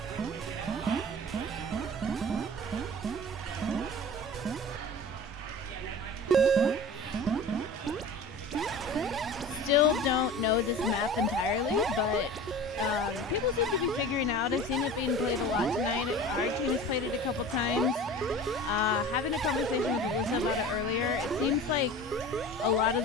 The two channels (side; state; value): both; normal; correlation 0.37